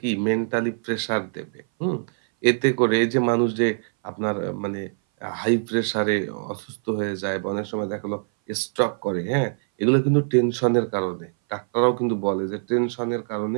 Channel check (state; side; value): silent; left; 59 dB below the other